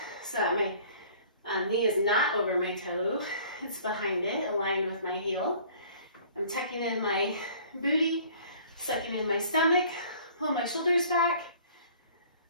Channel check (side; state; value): both; inverted; correlation -0.51